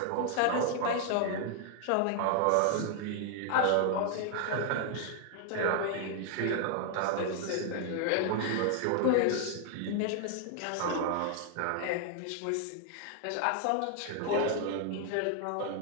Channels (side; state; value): both; different; correlation 0.00